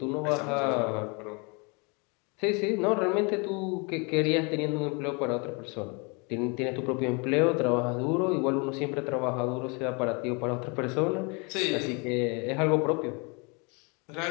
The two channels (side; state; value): right; quieter; 31.4 dB